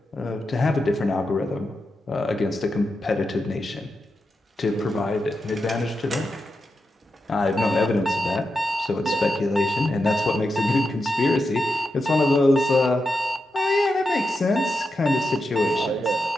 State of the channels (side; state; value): both; normal; correlation 0.88